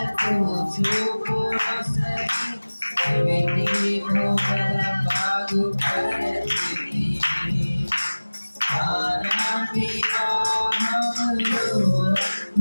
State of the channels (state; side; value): inverted; both; correlation -1.00